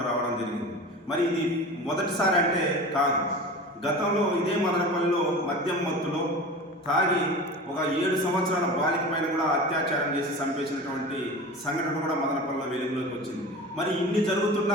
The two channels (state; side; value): normal; both; correlation 0.33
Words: రావడం జరిగింది. మరి ఇది మొదటిసారి అంటే కాదు. గతంలో ఇదే మదనపల్లిలో మద్యం మత్తులో తాగి ఒక 7 సంవత్సరాల బాలిక పైన కూడా అత్యాచారం చేసి చంపేసినటువంటి సంఘటన కూడా మదనపల్లిలో వెలుగులోకి వచ్చింది. మరి ఇన్ని జరుగుతున్న